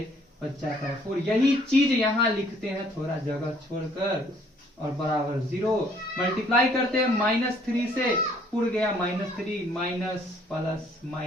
बच जाता है 4। यही चीज यहां लिखते हैं थोड़ा जगह छोड़कर, और बराबर 0 मल्टीप्लाई करते हैं -3 से, पुर गया -3 माइनस प्लस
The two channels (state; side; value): normal; both; correlation 0.62